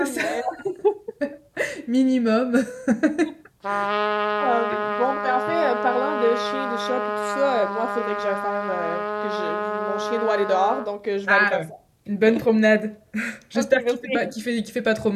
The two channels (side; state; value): both; identical; correlation 1.00